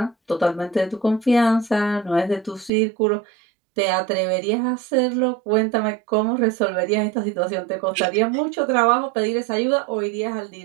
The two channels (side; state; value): left; drops out; at 2.7 s